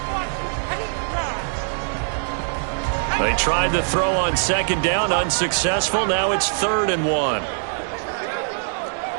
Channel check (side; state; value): left; silent; 62 dB below the other